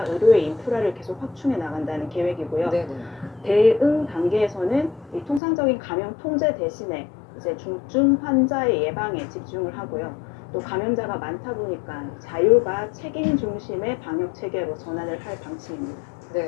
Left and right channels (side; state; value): right; drops out; at 5.4 s